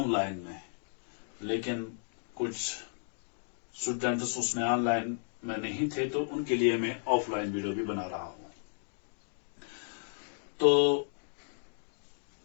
में, लेकिन कुछ स्टूडेंट्स उसमें ऑनलाइन में नहीं थे, तो उनके लिए मैं ऑफलाइन वीडियो भी बना रहा हूं। तो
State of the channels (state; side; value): silent; right; digital silence